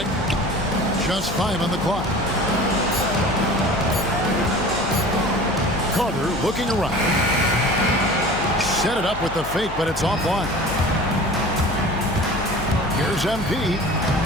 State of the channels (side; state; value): left; noise; hum, 11 dB below the sound